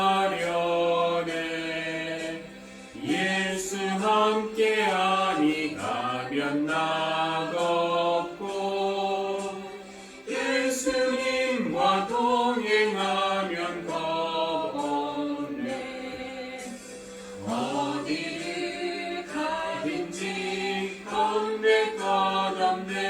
예수 함께 아니 가면 나갑고 예수님과 동행하면 겁 없네. 어디를 가든지 겁낼 것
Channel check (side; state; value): both; identical; correlation 1.00